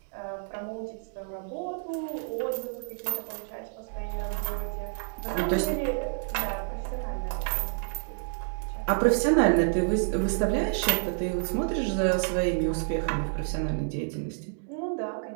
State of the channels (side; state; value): left; silent; digital silence